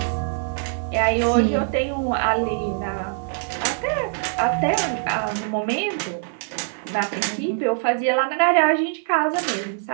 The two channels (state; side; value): silent; left; digital silence